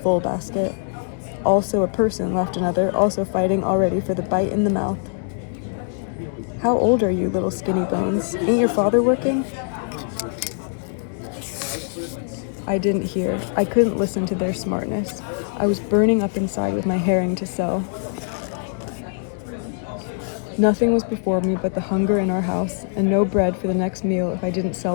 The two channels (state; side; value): silent; right; digital silence